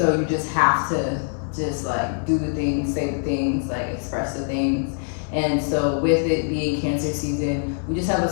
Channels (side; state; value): right; silent; 63 dB below the other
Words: you just have to just like do the things, say the things, like express the things. And so with it being Cancer season, we just have a